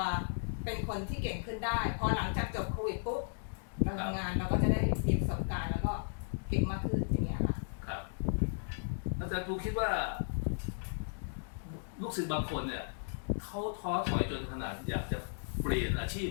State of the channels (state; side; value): silent; right; digital silence